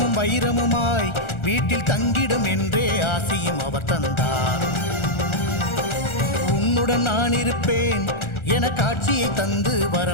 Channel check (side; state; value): right; late; 1.4 ms